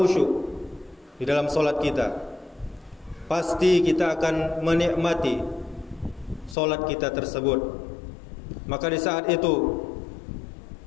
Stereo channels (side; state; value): right; drops out; at 6.6 s